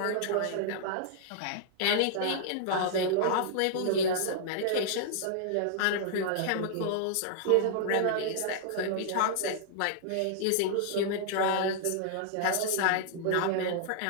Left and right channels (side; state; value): both; different; correlation -0.01